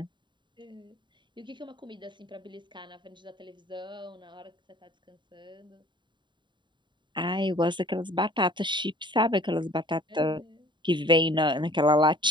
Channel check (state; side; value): late; left; 0.23 ms